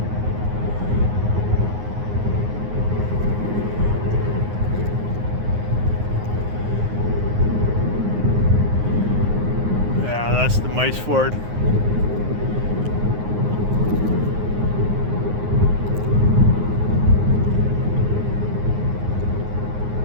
That's the Mice Ford.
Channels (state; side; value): late; left; 9.5 ms